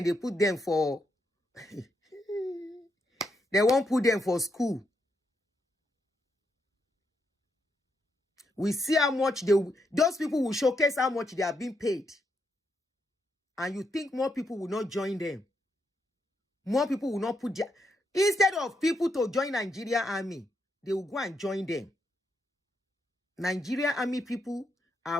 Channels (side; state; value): both; normal; correlation 0.80